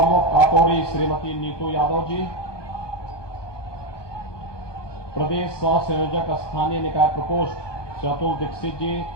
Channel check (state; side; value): late; right; 1.2 ms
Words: काकोरी श्रीमती नीतू यादव जी, प्रदेश सह संयोजक स्थानीय निकाय प्रकोष्ठ चतुर दीक्षित जी,